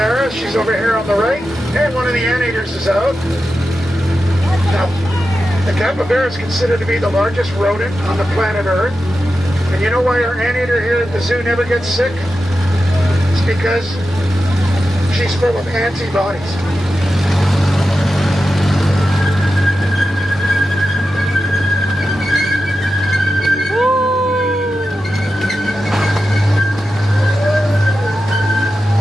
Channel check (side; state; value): both; normal; correlation 0.91